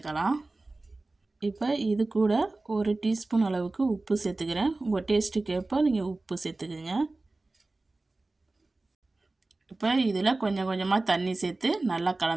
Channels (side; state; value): left; quieter; 3.2 dB